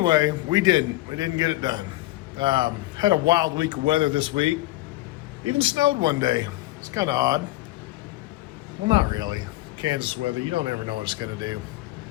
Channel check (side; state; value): right; quieter; 18.0 dB